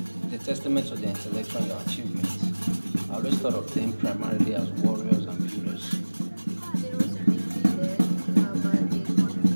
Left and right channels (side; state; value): both; inverted; correlation -1.00